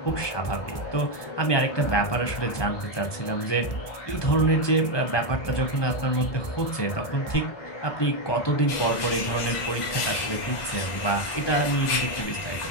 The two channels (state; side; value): late; right; 1.2 ms